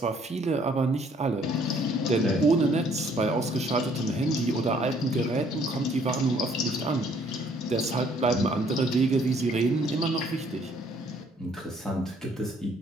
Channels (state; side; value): normal; both; correlation 0.62